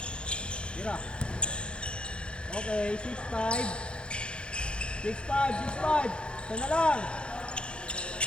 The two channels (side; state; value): right; late; 0.055 ms